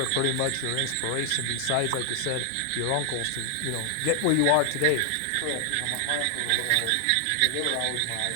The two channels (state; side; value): different; both; correlation 0.00